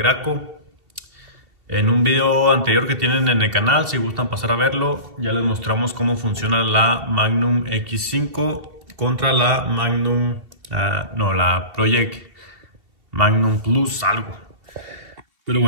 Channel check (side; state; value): left; late; 2.7 ms